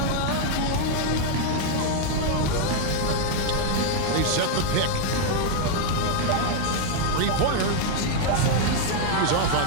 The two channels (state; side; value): different; both; correlation 0.00